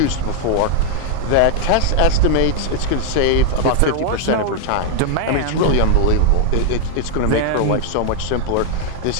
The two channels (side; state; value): both; different; correlation 0.00